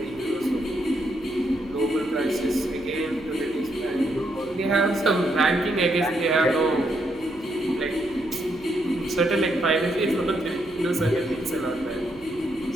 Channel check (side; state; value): right; noise; hum, 23 dB below the sound